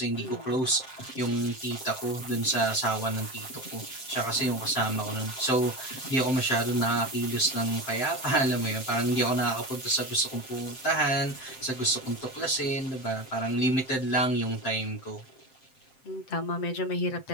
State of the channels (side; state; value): right; late; 7.7 ms